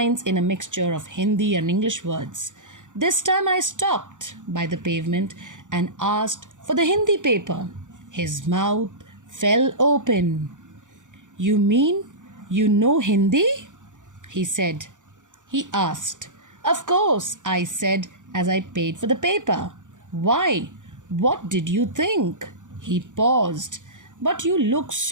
in a mixture of Hindi and English words. This time I stopped by the pavement and asked for the Hindi paper. His mouth fell open. You mean you know Hindi? He said. He asked. Of course, I said as I paid for the paper. Why? What did you think? He paused. But you look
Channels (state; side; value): late; left; 0.86 ms